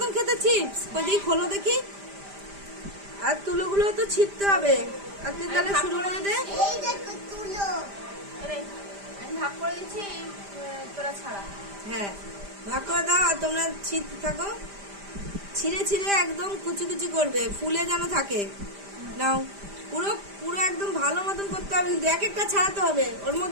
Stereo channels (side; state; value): left; late; 5.0 ms